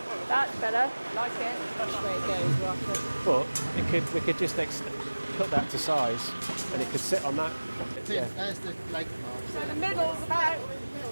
That's better. Like it. That's the way it goes, roughly. But we could just cut that to size, and it could sit on that. Yeah. That's the like. So the middle's about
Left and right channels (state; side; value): inverted; both; correlation -1.00